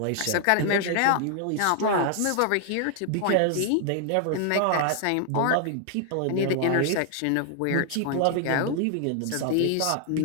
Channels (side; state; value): both; different; correlation 0.00